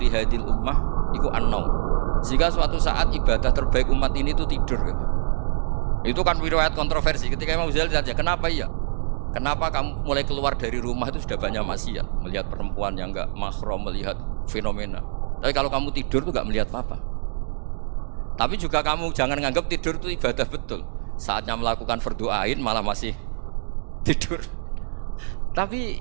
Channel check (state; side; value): silent; left; digital silence